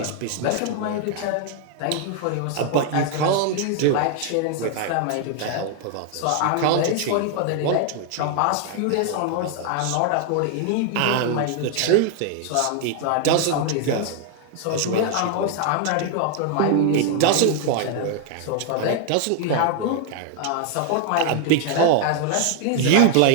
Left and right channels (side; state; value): both; different; correlation 0.00